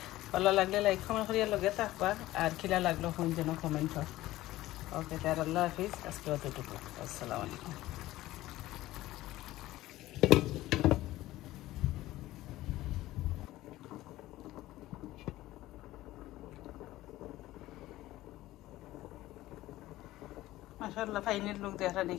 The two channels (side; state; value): right; quieter; 16.4 dB